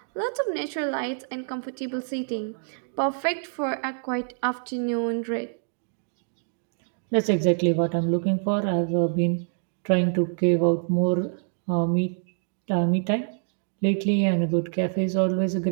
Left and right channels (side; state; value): left; silent; 61 dB below the other